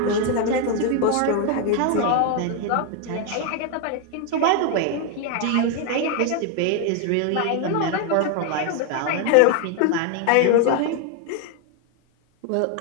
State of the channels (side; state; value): both; different; correlation 0.01